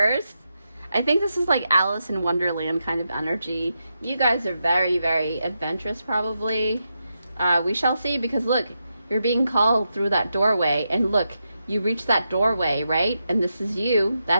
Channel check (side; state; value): both; inverted; correlation -0.86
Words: I think this is like Alice in Wonderland kind of energy. You guys are very, very adventurous probably. We shall see, because look, you're being called through that doorway, and look, you reach that doorway, right? And this is you.